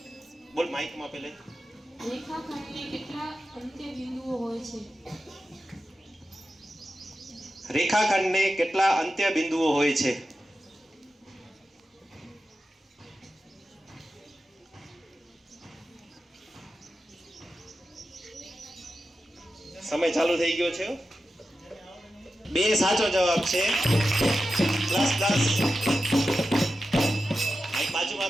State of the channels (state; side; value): normal; both; correlation 0.92